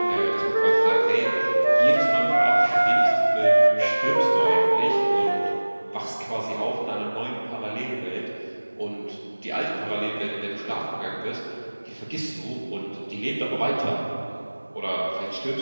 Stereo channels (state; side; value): inverted; both; correlation -1.00